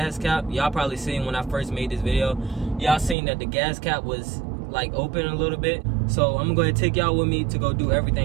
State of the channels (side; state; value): left; drops out; at 3.2 s